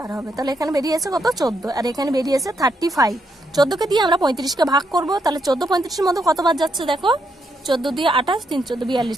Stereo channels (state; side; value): normal; both; correlation 0.78